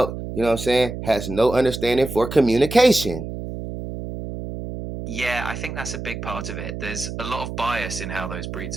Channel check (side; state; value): right; noise; hum, 7 dB below the sound